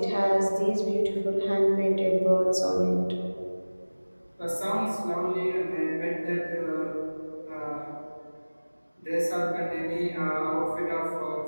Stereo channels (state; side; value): inverted; both; correlation -1.00